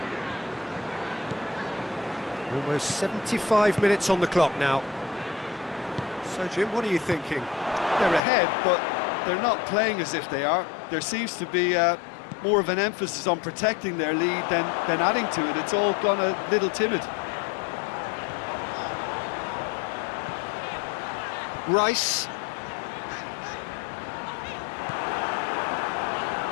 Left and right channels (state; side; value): drops out; right; at 8.2 s